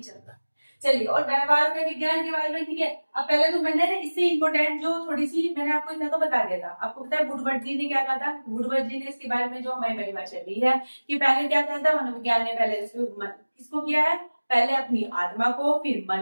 रहा है। चलिए, और व्यवहार का विज्ञान के बारे में, ठीक है। अब पहले तो मैंने इससे इंपोर्टेंट जो थोड़ी सी मैंने आपको इतना तो बता दिया था। आपको पता है वुडवर्ड जी ने क्या कहा था। वुडवर्ड जी ने इसके बारे में जो हमारी परिभाषा दी है कि पहले क्या कहा था मनोविज्ञान ने, पहले किसको किया है, पहले अपनी आत्मा को, फिर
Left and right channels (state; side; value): inverted; both; correlation -1.00